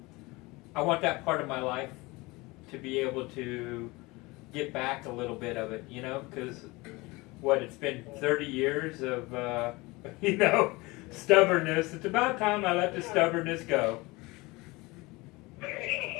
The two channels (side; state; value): right; quieter; 23.1 dB